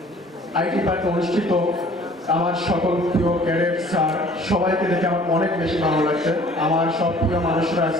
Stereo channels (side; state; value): both; normal; correlation 0.51